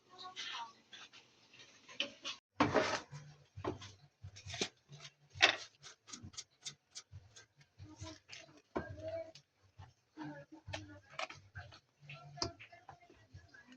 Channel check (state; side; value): identical; both; correlation 1.00